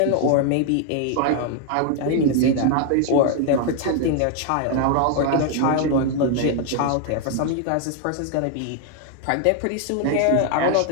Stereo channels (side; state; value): both; different; correlation 0.00